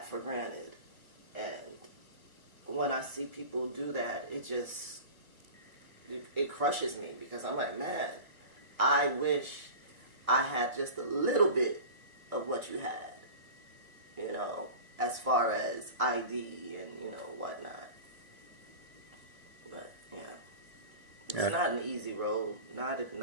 for granted. And when I see people do that, it crushes me because I'm like, man, I wish I had just a little bit of what you had, as far as ID and, whatnot. But, yeah, it's Yeah. not an easy road, not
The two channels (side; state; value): left; late; 2.1 ms